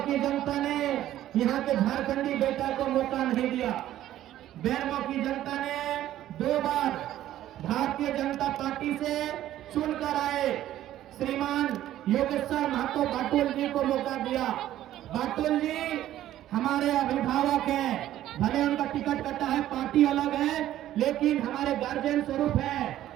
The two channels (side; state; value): left; quieter; 13.0 dB